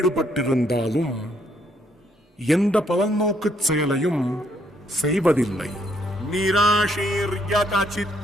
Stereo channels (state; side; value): normal; both; correlation 0.71